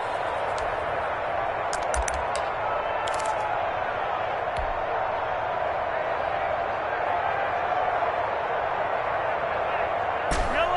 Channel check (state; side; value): identical; both; correlation 1.00